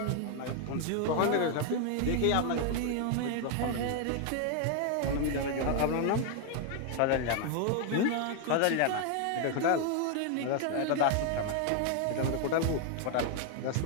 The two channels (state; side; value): different; both; correlation 0.00